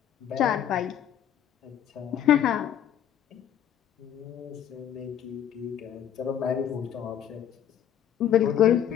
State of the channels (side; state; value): right; quieter; 9.9 dB